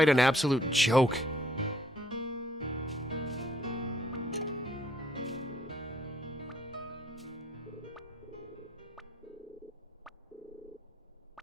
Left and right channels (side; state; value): both; normal; correlation 0.67